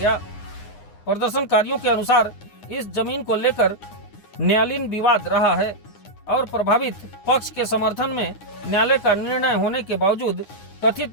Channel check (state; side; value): late; right; 9.8 ms